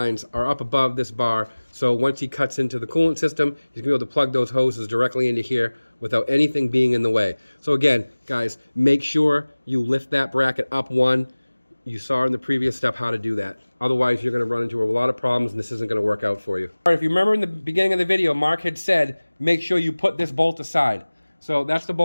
are up above this bar, so once he cuts into the coolant system, he's going to be able to plug those hoses directly into here without anything being in the way. So again, guys, make sure you lift that bracket up one. You saw in the previous step how to do that. Otherwise, you're going to run into a lot of problems and this isn't going to work out for you. All right, if you remember in the beginning of the video, Mark had said, make sure you put this bolt aside. So that's the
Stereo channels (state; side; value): inverted; both; correlation -1.00